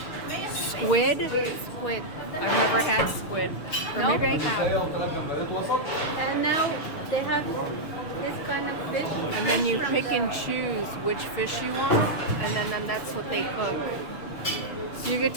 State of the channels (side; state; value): right; late; 6.5 ms